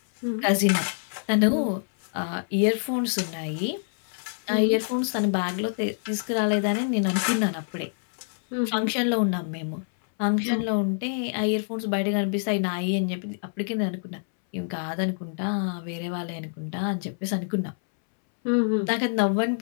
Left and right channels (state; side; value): silent; right; 61 dB below the other